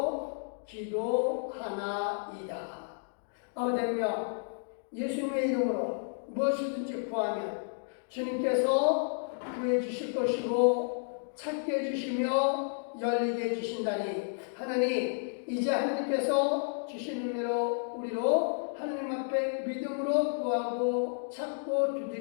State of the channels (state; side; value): silent; right; digital silence